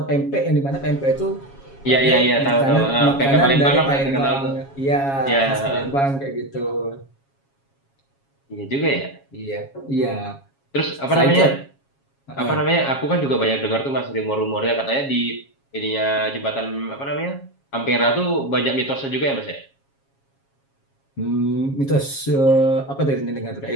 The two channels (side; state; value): right; late; 7.3 ms